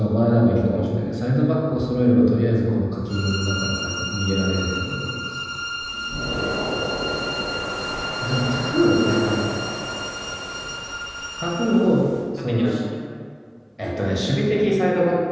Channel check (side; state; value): both; identical; correlation 1.00